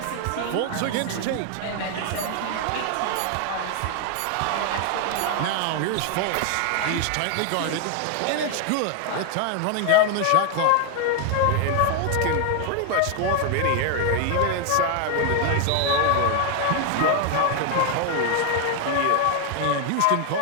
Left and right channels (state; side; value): different; both; correlation 0.00